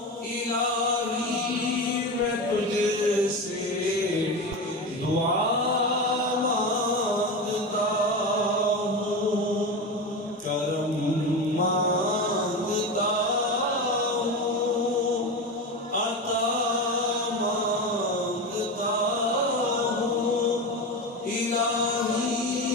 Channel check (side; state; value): both; normal; correlation 0.22